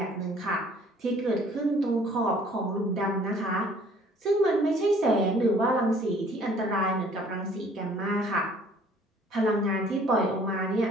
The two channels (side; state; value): both; normal; correlation 0.56